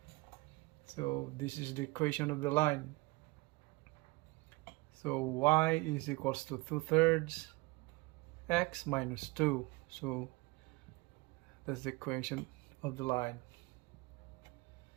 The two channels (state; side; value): quieter; left; 24.2 dB